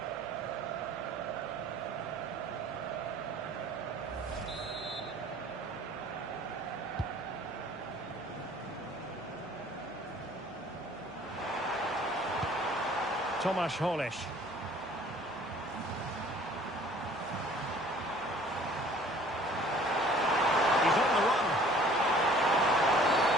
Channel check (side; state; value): left; noise; hum, 27 dB below the sound